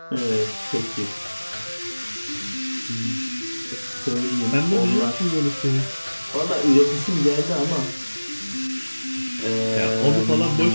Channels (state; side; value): inverted; both; correlation -1.00